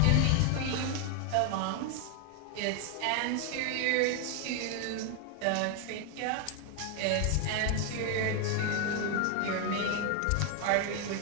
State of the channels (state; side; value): different; both; correlation 0.01